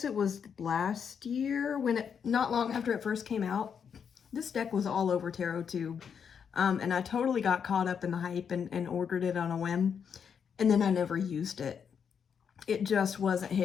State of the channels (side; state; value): right; quieter; 7.1 dB